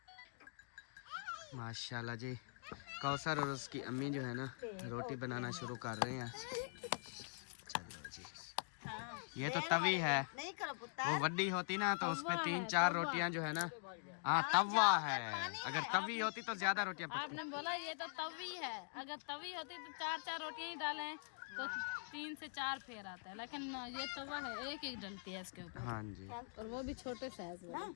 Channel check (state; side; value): silent; right; digital silence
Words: माशाल्लाह जी, कौसर और उसकी अम्मी जो है ना रोटी बनाना शुरू कर रहे हैं। चलो जी, ये तो तवी है, वो वड्डी होती ना तो उस पे 3-4 रोटियां जो है ना, हाँ तवा है, अगर तवी होती तो ज्यादा रोटियां पकती। आपने बोला ये तो तवी है, अगर तवी होती तो 4-4 रोटियां ही डालें तो 3 से 4 फेर आता है, लेकिन ये तवा है, एक एक डलती है इसके ऊपर। हाँ जी, और वो भी छोटे साइज में।